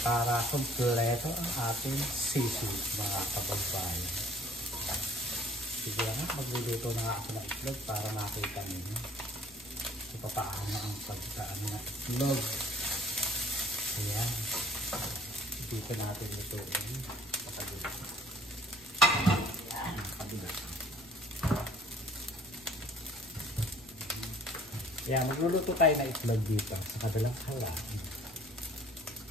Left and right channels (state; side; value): normal; both; correlation 0.54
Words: para kumpleto ang ating sisi, mga kababayan. Sige nga, magluluto na nga ako ng itlog para makita ninyo kung paano ang pagkaan ng itlog. Ayan. Dito natin lutuin. Pakabila. Ayan, pakabila. Ayan, magluluto tayo ng itlog dito sa kabilang halaan.